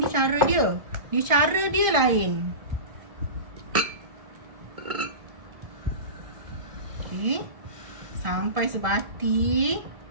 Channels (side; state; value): left; late; 1.4 ms